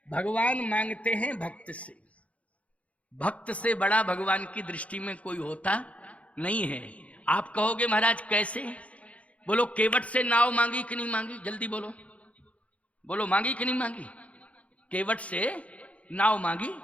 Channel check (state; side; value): late; right; 0.065 ms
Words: भगवान मांगते हैं भक्त से। भक्त से बड़ा भगवान की दृष्टि में कोई होता नहीं है। आप कहोगे महाराज कैसे? बोलो केवट से नाव मांगी कि नहीं मांगी? जल्दी बोलो, बोलो मांगी कि नहीं मांगी? केवट से नाव मांगी,